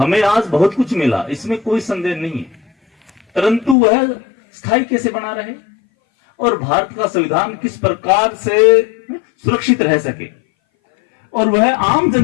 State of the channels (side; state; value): right; drops out; at 3.8 s